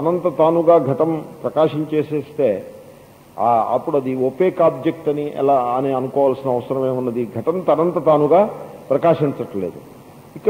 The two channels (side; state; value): both; identical; correlation 1.00